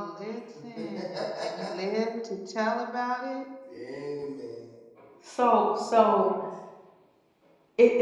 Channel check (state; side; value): identical; both; correlation 1.00